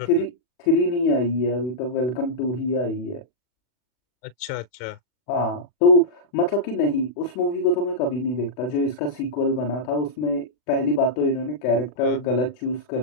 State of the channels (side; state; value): right; late; 40 ms